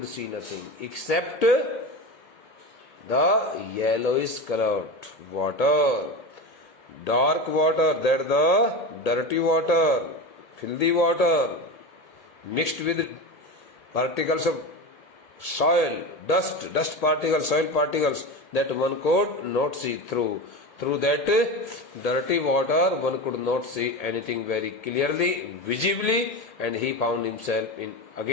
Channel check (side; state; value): right; late; 1.8 ms